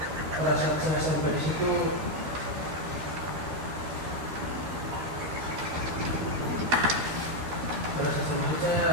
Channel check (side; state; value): left; late; 12 ms